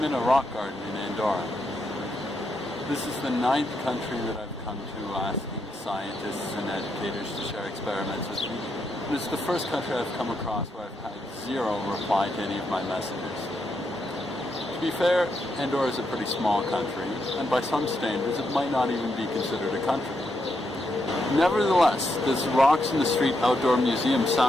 in a rock garden in Andorra. This is the 9th country that I've come to asking scientists and educators to share experiments with me. And it's the first country I've come across where I've had zero reply to any of my messages. To be fair, Andorra is a pretty small country, and by some standards it might not even be considered a country. Nevertheless, this Rocks in the Street outdoor museum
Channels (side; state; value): both; normal; correlation 0.81